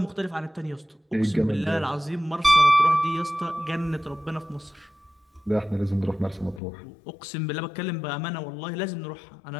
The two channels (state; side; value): drops out; right; at 6.6 s